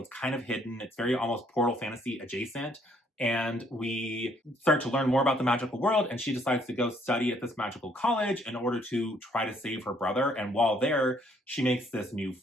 is kind of hidden. It's very almost Portal Fantasy adjacent. And we start to learn more about the magical world, and she decides to go study at this magical college in order to try to save her brother. And while there, she makes this new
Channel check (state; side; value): normal; both; correlation 0.66